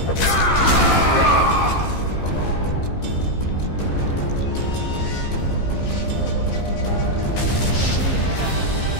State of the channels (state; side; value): late; right; 15 ms